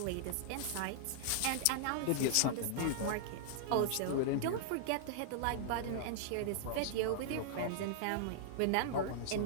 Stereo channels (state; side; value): different; both; correlation -0.01